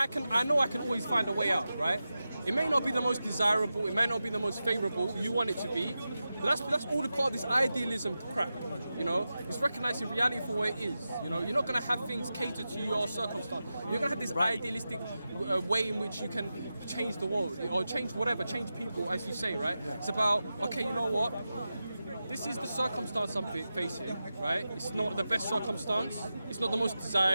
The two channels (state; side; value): inverted; both; correlation -0.92